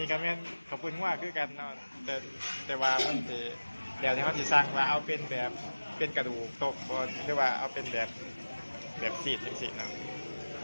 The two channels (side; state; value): both; inverted; correlation -1.00